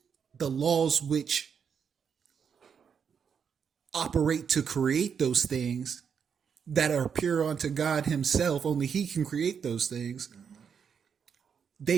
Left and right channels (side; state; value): left; quieter; 6.9 dB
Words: the laws which operate to create those things that are pure unto God himself, only he can create those things.